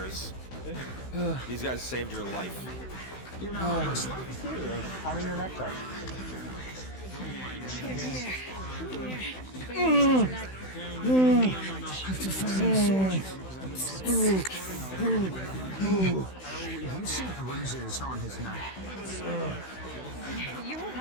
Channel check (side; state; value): right; late; 16 ms